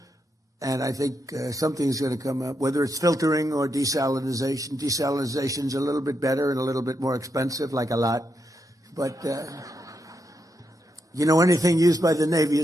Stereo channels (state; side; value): normal; both; correlation 0.83